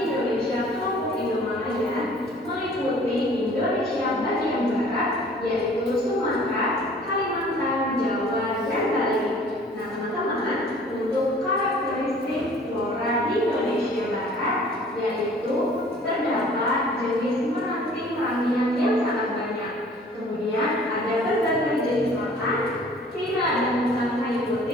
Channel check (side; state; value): both; normal; correlation 0.51